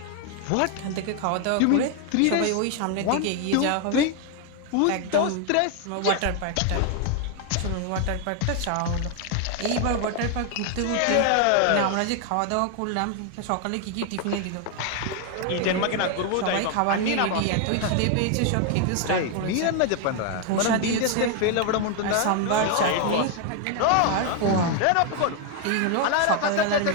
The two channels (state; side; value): different; both; correlation 0.01